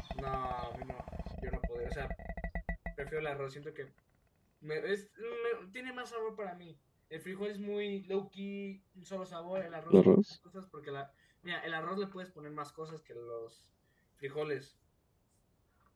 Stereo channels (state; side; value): identical; both; correlation 1.00